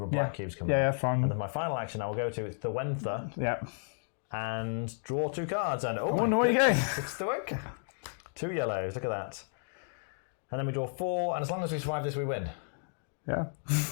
of black cubes coming out. Yeah, fine. And then my final action I will go to Thuenca. Yeah. And draw 2 cards. And oh my goodness, it's Thuenca. 2 yellows, look at that. And then we draw 4, and as long as we survive this, we win. Yeah.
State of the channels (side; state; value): right; silent; digital silence